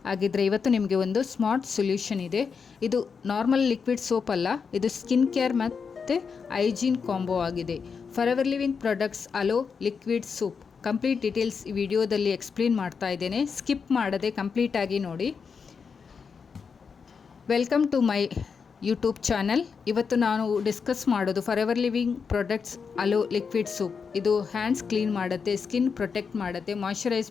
ಹಾಗಿದ್ರೆ ಇವತ್ತು ನಿಮಗೆ ಒಂದು ಸ್ಮಾರ್ಟ್ ಸೊಲ್ಯೂಷನ್ ಇದೆ. ಇದು ನಾರ್ಮಲ್ ಲಿಕ್ವಿಡ್ ಸೋಪ್ ಅಲ್ಲ, ಇದು ಸ್ಕಿನ್ ಕೇರ್ ಮತ್ತು ಹೈಜೀನ್ ಕಾಂಬೋ ಆಗಿದೆ. Forever living products aloe liquid soap complete details ಈ ವಿಡಿಯೋದಲ್ಲಿ ಎಕ್ಸ್ಪ್ಲೇನ್ ಮಾಡ್ತಾ ಇದ್ದೇನೆ. ಸ್ಕಿಪ್ ಮಾಡದೆ ಕಂಪ್ಲೀಟಾಗಿ ನೋಡಿ. Welcome to my YouTube channel. ಇವತ್ತು ನಾನು ಡಿಸ್ಕಸ್ ಮಾಡೋದು forever living products aloe liquid soap. ಇದು ಹ್ಯಾಂಡ್ಸ್ ಕ್ಲೀನ್ ಮಾಡುತ್ತೆ, ಸ್ಕಿನ್ ಪ್ರೊಟೆಕ್ಟ್ ಮಾಡುತ್ತೆ, ಮಾಯ್ಶ್ಚರೈಸ್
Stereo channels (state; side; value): quieter; right; 5.8 dB